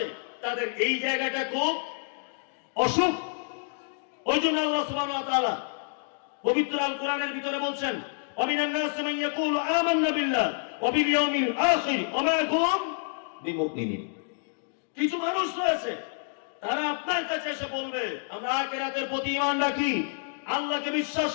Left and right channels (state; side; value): silent; right; digital silence